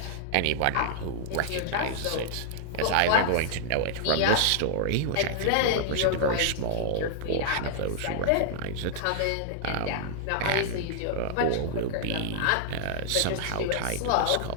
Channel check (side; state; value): both; different; correlation -0.01